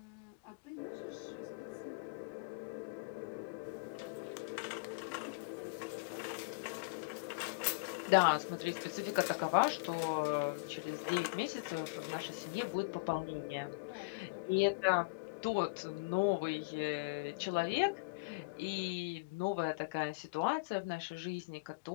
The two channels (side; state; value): right; quieter; 28.9 dB